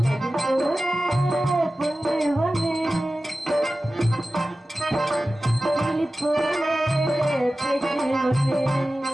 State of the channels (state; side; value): normal; both; correlation 0.95